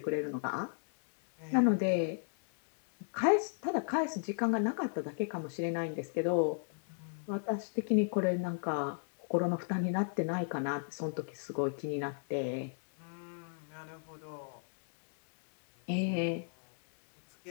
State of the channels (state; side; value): silent; right; 55 dB below the other